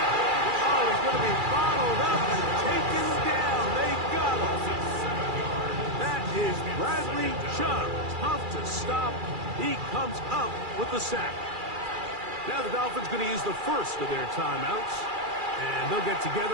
Oh, he's going to be bottled up and taken down. They got him. That is Bradley Chubb. Tough to stop. He comes up with the sack. Now the Dolphins going to use the first of their timeouts, and they'll get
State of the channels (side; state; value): left; late; 2.4 ms